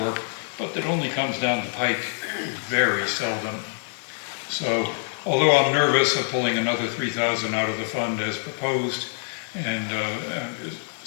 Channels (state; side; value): silent; right; 60 dB below the other